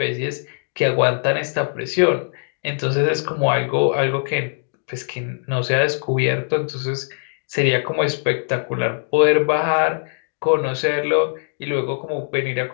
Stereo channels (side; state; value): right; silent; digital silence